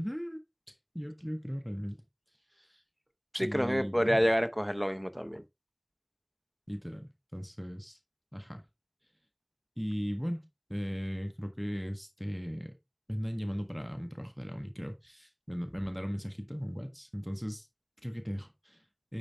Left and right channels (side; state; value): both; identical; correlation 1.00